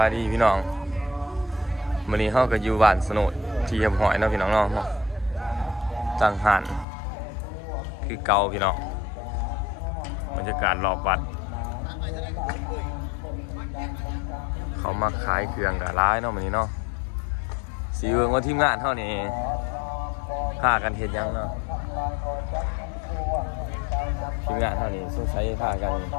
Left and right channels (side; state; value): right; drops out; at 6.9 s